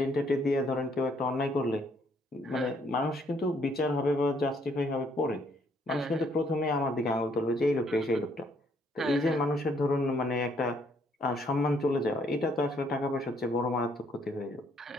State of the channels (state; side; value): normal; both; correlation 0.68